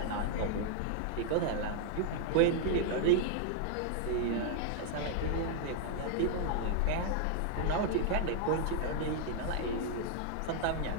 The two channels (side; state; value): both; different; correlation 0.00